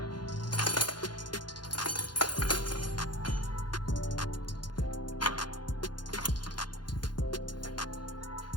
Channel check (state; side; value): late; right; 0.71 ms